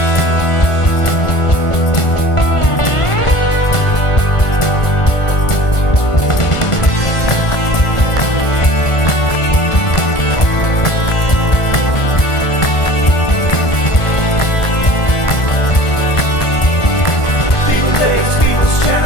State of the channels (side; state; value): right; late; 1.5 ms